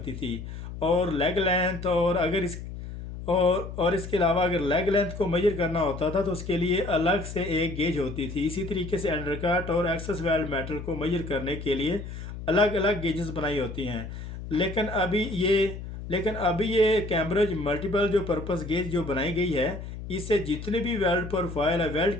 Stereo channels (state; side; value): noise; left; hum, 9 dB below the sound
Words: थी और लेग लेंथ और अगर इस और इसके अलावा अगर लेग लेंथ को मेजर करना होता था तो उसके लिए अलग से एक गेज होती थी। इसी तरीके से अंडरकट और एक्सेस वेल्ड मेटल को मेजर करने के लिए अलग अलग गेजेस बनाई होती हैं। लेकिन अभी ये कैम्ब्रिज मल्टीपल जो पर्पस गेज जो बनाई गई है इससे जितने भी वेल्ड प्रोफाइल है, वेल्ड